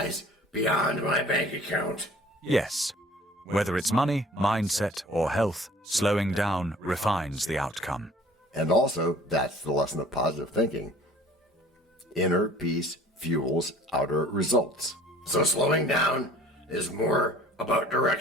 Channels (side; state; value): both; normal; correlation 0.50